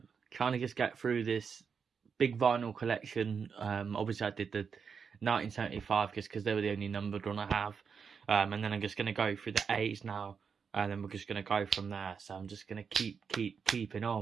trying to just get through this big vinyl collection. Obviously, I did the 1975 just because they were the only numbered one I have, and then I'm just gonna go through the A's now, and then we're just gonna go from there. So I'm just gonna keeping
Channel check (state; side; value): quieter; left; 6.2 dB